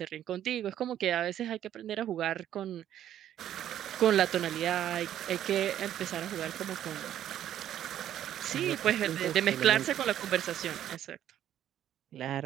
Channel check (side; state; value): left; quieter; 11.2 dB